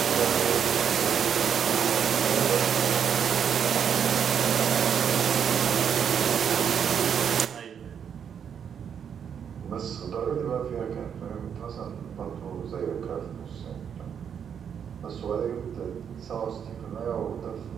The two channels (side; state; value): left; quieter; 7.9 dB